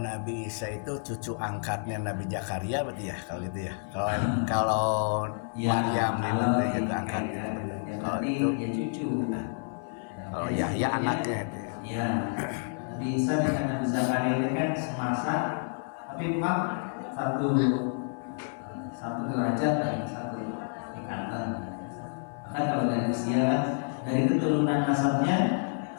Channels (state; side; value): silent; right; 57 dB below the other